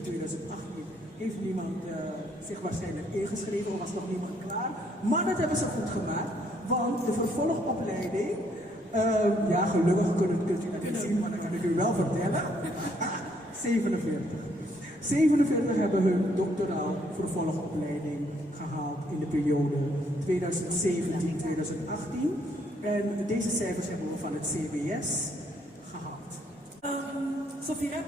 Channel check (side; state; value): both; normal; correlation 0.69